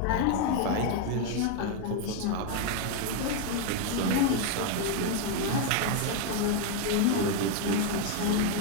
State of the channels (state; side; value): different; both; correlation 0.01